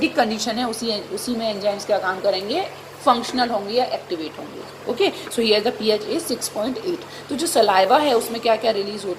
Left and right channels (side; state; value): both; identical; correlation 1.00